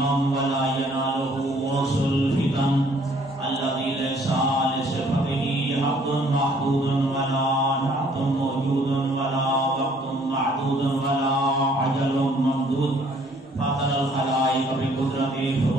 ولا يناله وصل الفتن الذي ليس لصفته حد محدود ولا نعت موجود ولا وقت معدود ولا عجل ممدود. فاطر الخلائق بقدرته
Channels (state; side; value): normal; both; correlation 0.61